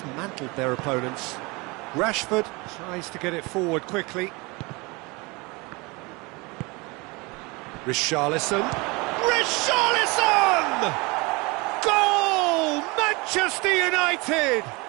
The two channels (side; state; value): left; quieter; 26.2 dB